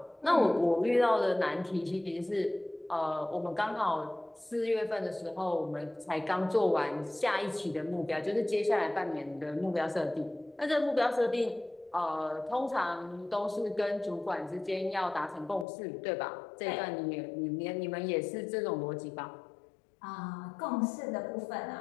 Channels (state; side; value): drops out; right; at 15.7 s